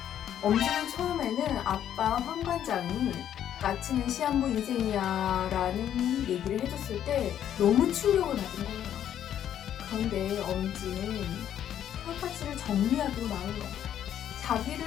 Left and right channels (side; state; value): right; quieter; 10.3 dB